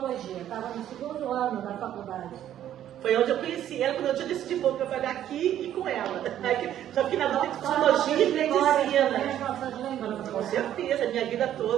estava no 2º ano da faculdade. Foi onde eu conheci ela, quando eu tinha decidido vou trabalhar aqui e com ela. Só que na dúvida de psicologia e medicina. Com certeza, minha vida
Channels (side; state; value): left; quieter; 11.3 dB